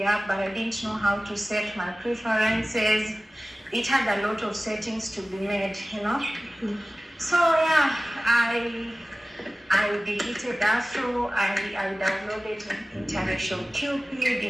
app, but I didn't know how to set my preferences. It had a lot of settings to be made, you know. So yeah, I deleted Afro. I downloaded International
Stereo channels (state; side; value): normal; both; correlation 0.97